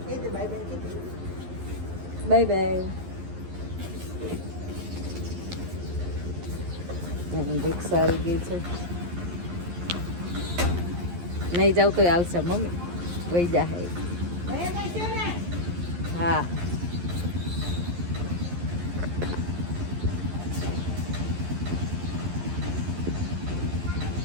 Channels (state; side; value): late; left; 11 ms